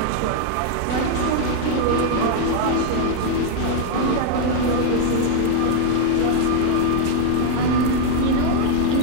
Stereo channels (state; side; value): different; both; correlation 0.00